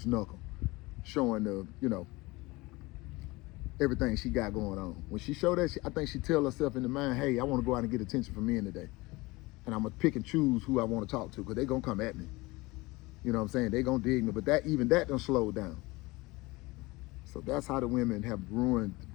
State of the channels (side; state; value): right; quieter; 22.3 dB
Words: knuckle, showing the, everything she got going on. When she show that, I think she tell herself in the mind, hey, I want to go out and get attention from men today. And I'm going to pick and choose who I want to talk to because they going to come at me. You know what I'm saying? They going to dig me. But even that done slowed down. So that's how the women have ruined,